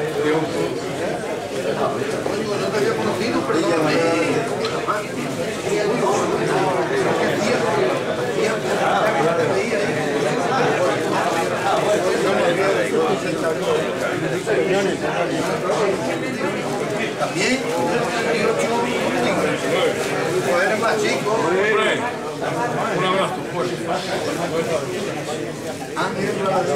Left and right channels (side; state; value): right; noise; hum, 28 dB below the sound